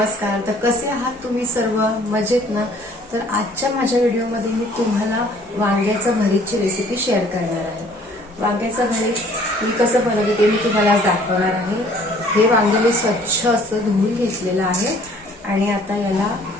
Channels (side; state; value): both; normal; correlation 0.56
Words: तर कसे आहात तुम्ही सर्व? मजेत ना? तर आजच्या माझ्या व्हिडिओमध्ये मी तुम्हाला वांग्याचं भरीतची रेसिपी शेअर करणार आहे. वांग्याचं भरीत मी कसं बनवते ते मी तुम्हाला आज दाखवणार आहे. हे वांगे मी स्वच्छ असं धुवून घेतलेलं आहे आणि आता याला